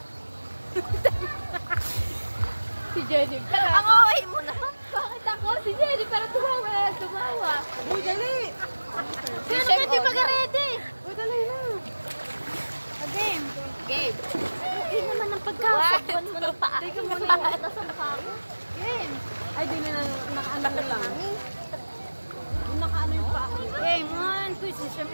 Si Jennifer. Ang okay mo na. Bakit ako? Si Jennifer tumawa na tumawa. Uy, dali. Si Jennifer mag-ready. Uy, dali na. Game. Game. Okay naman ang pagkakasakwan mo ng paa. Teka mo na yung sa mukha ko. Game. Ay, di na nakaano ko lang. Yung nakaano yung paa ko. Game 1. Quiz is siyang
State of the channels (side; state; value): both; inverted; correlation -1.00